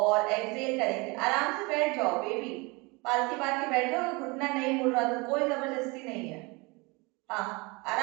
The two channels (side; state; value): left; quieter; 26.8 dB